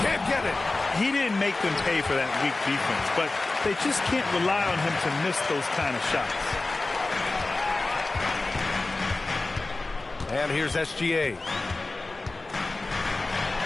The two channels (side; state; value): right; quieter; 3.2 dB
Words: Can't get it. He didn't make them pay for that weak defense, but they just can't rely on him to miss those kind of shots. And here's SGA.